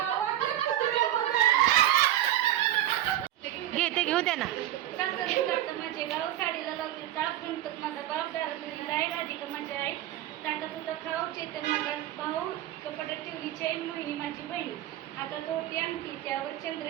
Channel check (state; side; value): quieter; left; 13.2 dB